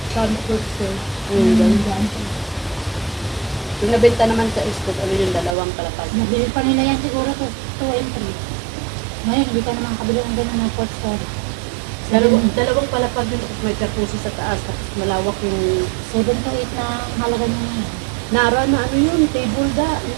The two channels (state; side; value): drops out; left; at 5.6 s